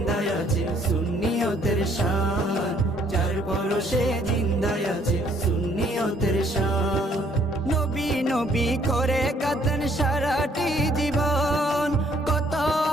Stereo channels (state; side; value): normal; both; correlation 0.64